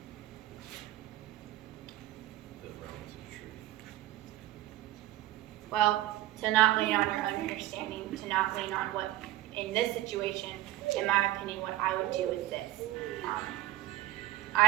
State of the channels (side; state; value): left; quieter; 15.8 dB